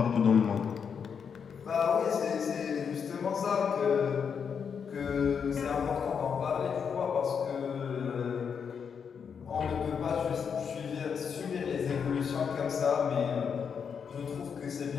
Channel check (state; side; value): quieter; right; 6.7 dB